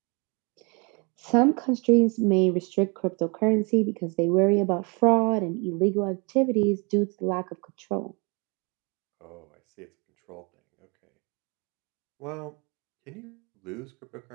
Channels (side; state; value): left; quieter; 31.4 dB